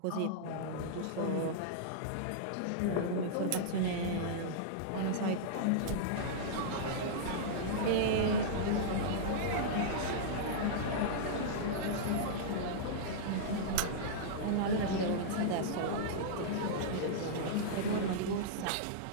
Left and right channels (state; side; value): different; both; correlation -0.03